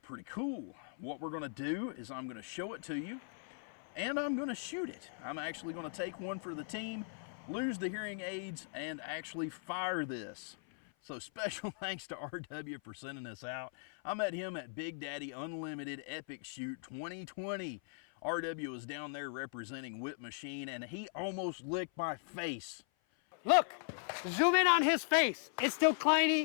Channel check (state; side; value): silent; right; 52 dB below the other